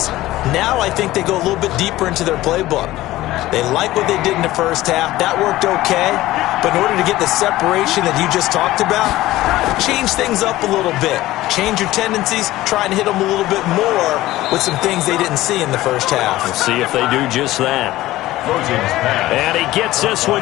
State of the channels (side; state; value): right; quieter; 16.5 dB